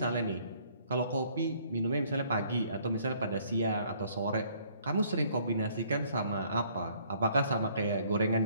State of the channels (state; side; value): inverted; both; correlation -0.62